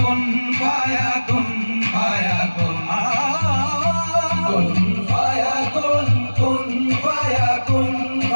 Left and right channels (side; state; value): both; inverted; correlation -1.00